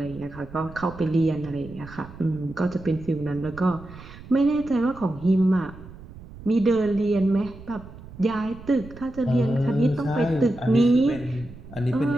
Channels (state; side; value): noise; right; rumble, 17 dB below the sound